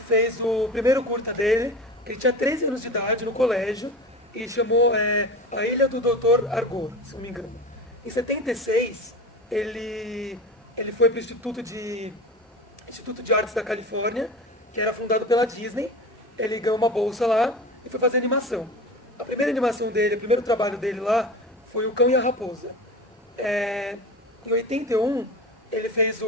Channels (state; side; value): normal; both; correlation 0.31